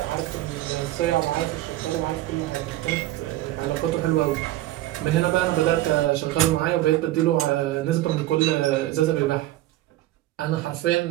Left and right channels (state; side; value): quieter; left; 15.5 dB